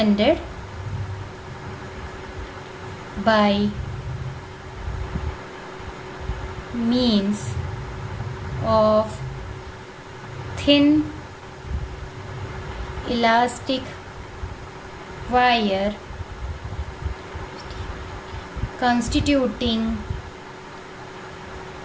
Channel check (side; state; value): both; identical; correlation 1.00